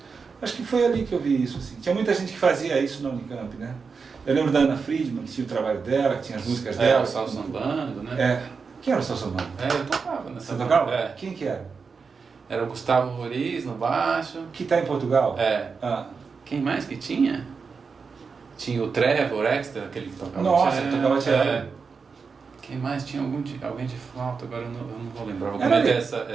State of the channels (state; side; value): quieter; left; 5.2 dB